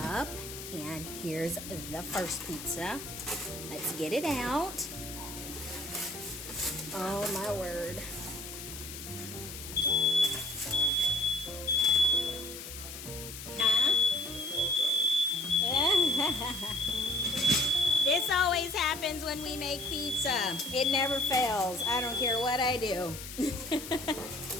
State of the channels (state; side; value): noise; left; hiss, 11 dB below the sound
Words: And here's the first pizza. Let's get it out. Oh my word. Huh? This always happens when we make pizza. It never fails. I don't care what I do.